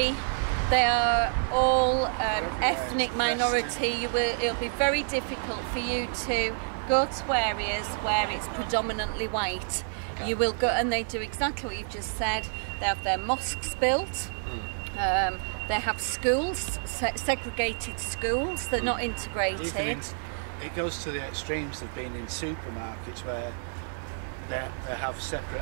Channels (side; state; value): left; silent; digital silence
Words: They are all ethnic minority. It'll be very difficult for you to go to areas where it's predominantly white. Okay. You will go, and they do exactly what you've just said. They have their mosques built. They have schools, segregated schools. They're not integrated. It goes to the extremes of being in supermarkets where they have separate